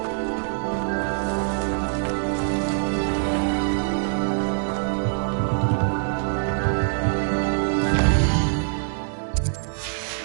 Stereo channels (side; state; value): left; silent; 63 dB below the other